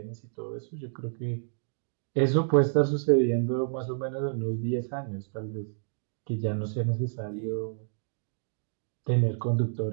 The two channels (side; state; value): left; silent; digital silence